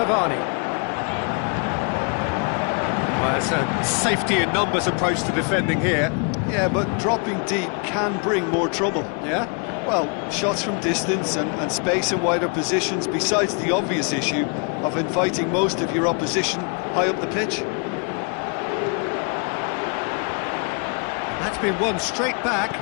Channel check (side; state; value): right; quieter; 37.2 dB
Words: Well, it's a safety in numbers approach to defending here. Yeah, but dropping deep can bring more trouble. Yeah? Well, shots from distance and space in wider positions, besides the obvious issue of inviting most of your opposition high up the pitch. That's been won straight back.